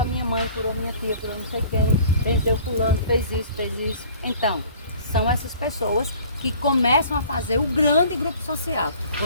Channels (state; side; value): inverted; both; correlation -0.49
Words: minha mãe, curou minha tia, curou não sei quem, benzeu fulano, fez isso, fez isso. Então, são essas pessoas que começam a fazer o grande grupo social.